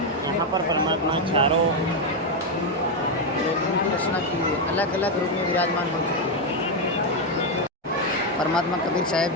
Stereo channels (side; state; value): both; normal; correlation 0.04